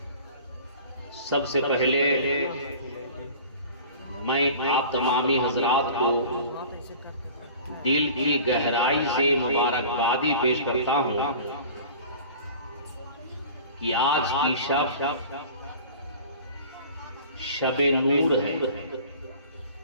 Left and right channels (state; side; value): inverted; both; correlation -0.41